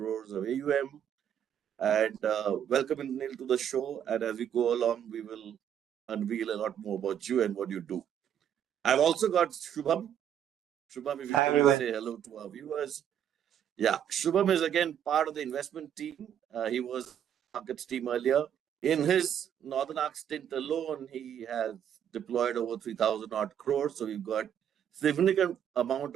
of AUM. And welcome, Neil, to the show. And as we go along, we will unveil a lot more about you and what you do. I've also got Shubham. Shubham, if you Hi can everyone. say hello to our viewers. Yeah, Shubham is again part of the investment team. He was markets team earlier. In his Northern Arc stint alone, he has deployed over 3,000 odd crores. So we've got significant amount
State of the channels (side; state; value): left; quieter; 9.5 dB